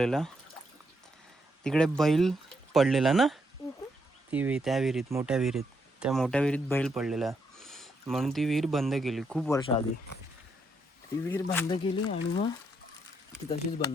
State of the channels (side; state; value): both; normal; correlation 0.77